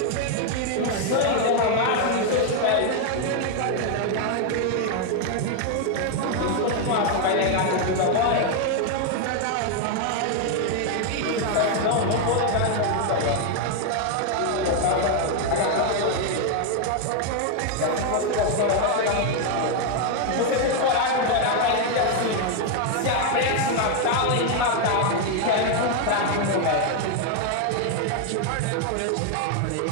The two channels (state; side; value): different; both; correlation 0.01